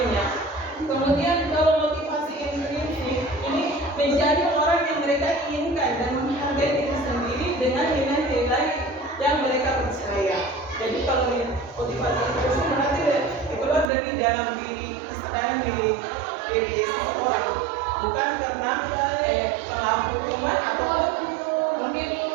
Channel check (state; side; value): drops out; left; at 13.9 s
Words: ya. Kemudian kalau motivasi intrinsik ini menjadi orang yang mereka inginkan dan menghargai diri sendiri dengan nilai-nilai yang mereka percaya. Jadi kalau motivasi intrinsik berarti keluar dari dalam diri, kesadaran diri seseorang, bukan karena pengaruh hukuman ataupun mungkin